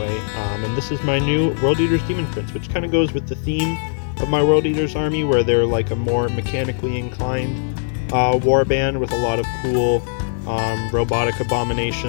and this is my new World Eater's Demon Prince, which kind of goes with the theme of my World Eater's army, where they're like a more mechanically inclined warband with a lot of cool robotic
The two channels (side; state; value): right; silent; 65 dB below the other